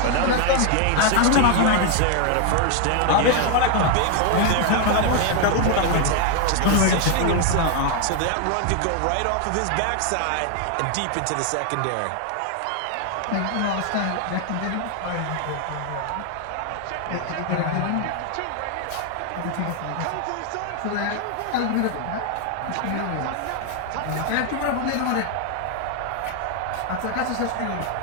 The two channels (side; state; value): both; different; correlation 0.00